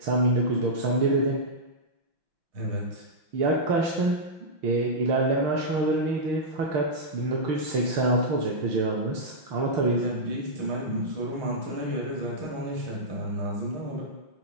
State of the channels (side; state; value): left; late; 5.8 ms